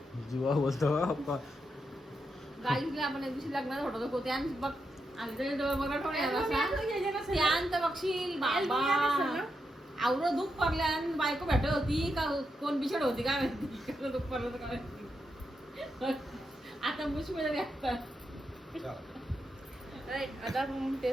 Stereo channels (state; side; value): normal; both; correlation 0.84